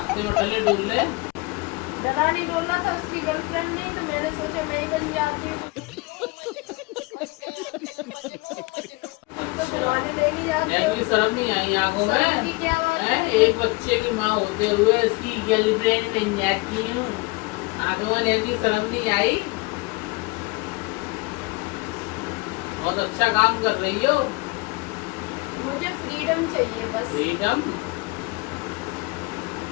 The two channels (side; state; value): right; quieter; 25.5 dB